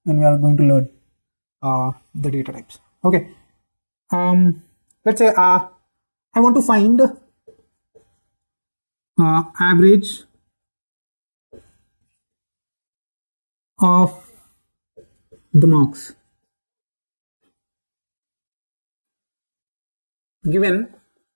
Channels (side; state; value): both; inverted; correlation -1.00